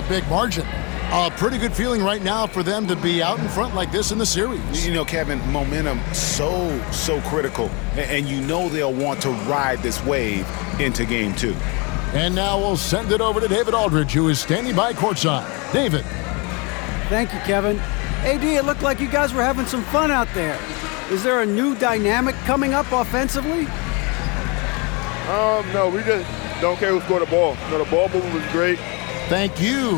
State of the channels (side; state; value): right; quieter; 29.5 dB